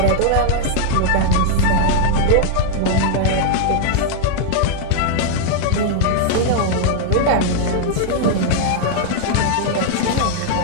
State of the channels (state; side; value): different; both; correlation -0.01